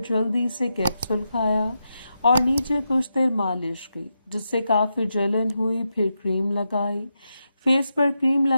جلدی سے کیپسول کھایا اور نیچے کچھ دیر مالش کی جس سے کافی جلن ہوئی، پھر کریم لگائی، فیس پر کریم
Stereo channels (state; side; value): inverted; both; correlation -0.86